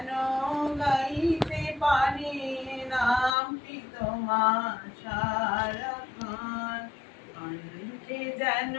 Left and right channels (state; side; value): drops out; right; at 3.3 s